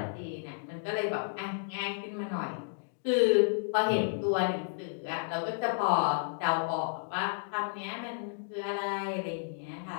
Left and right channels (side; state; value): right; silent; digital silence